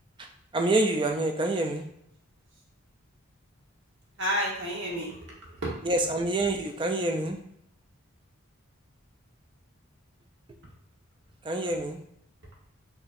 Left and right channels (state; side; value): normal; both; correlation 0.45